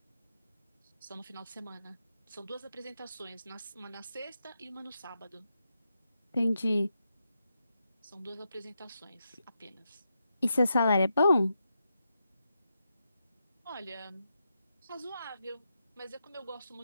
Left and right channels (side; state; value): both; inverted; correlation -0.85